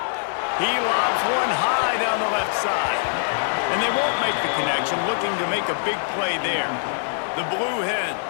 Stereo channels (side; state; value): right; silent; digital silence